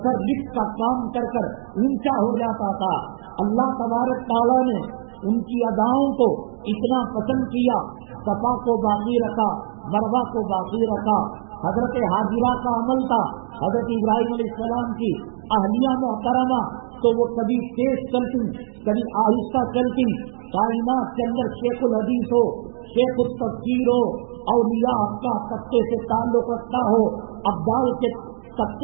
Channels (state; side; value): silent; left; digital silence